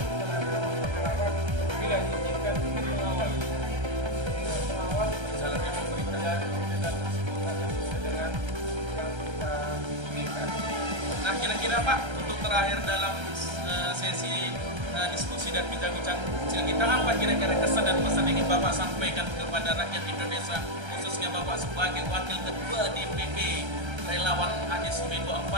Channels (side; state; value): left; late; 1.3 ms